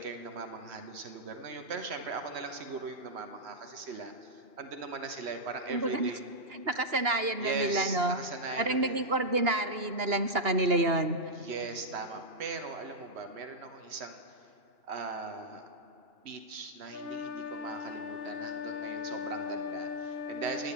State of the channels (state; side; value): late; left; 2.9 ms